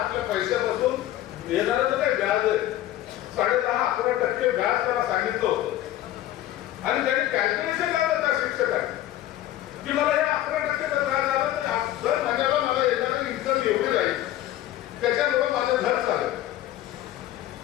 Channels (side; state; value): right; quieter; 13.7 dB